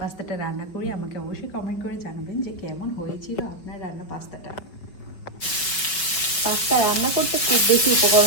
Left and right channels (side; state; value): right; late; 5.3 ms